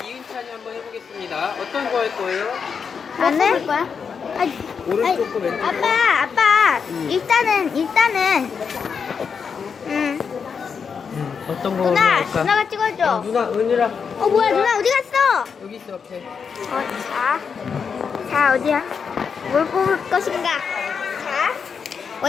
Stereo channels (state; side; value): quieter; right; 6.2 dB